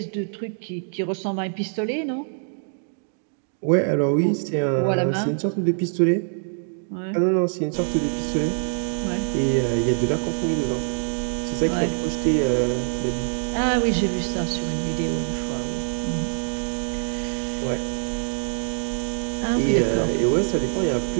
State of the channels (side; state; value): left; silent; digital silence